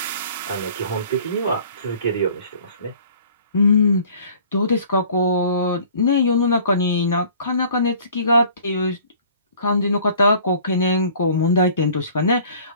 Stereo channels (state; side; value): inverted; both; correlation -0.50